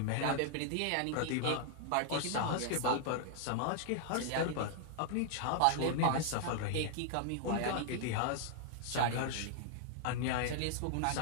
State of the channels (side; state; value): both; different; correlation 0.00